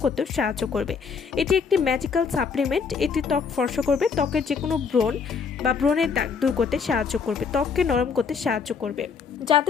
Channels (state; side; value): quieter; right; 5.8 dB